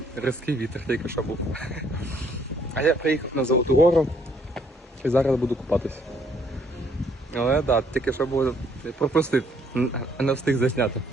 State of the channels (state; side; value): normal; both; correlation 0.66